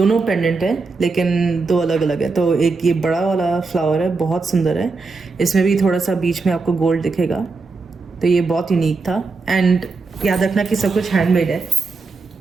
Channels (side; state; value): left; quieter; 4.1 dB